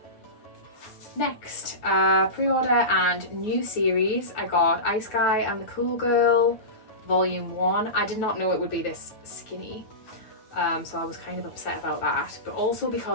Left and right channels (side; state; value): right; late; 9.1 ms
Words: Next, pre-order and new series, I got Ice Guy and the Cool Girl Volume 1. I did not know it would be this skinny, so I was kind of upset about that, but also